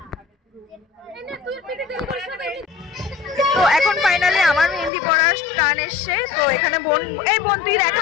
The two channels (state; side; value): drops out; right; at 4.9 s